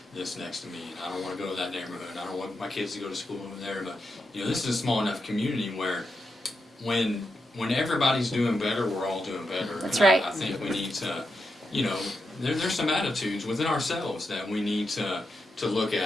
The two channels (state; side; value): normal; both; correlation 0.86